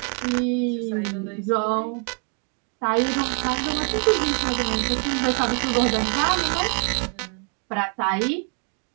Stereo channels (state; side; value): quieter; left; 35.4 dB